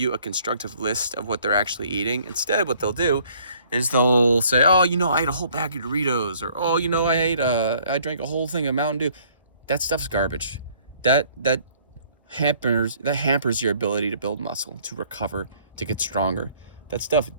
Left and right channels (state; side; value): inverted; both; correlation -0.60